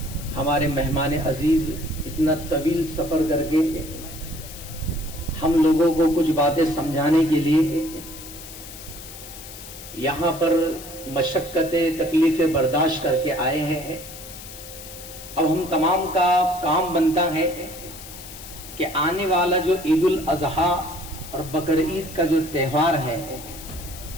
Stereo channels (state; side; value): noise; left; hiss, 14 dB below the sound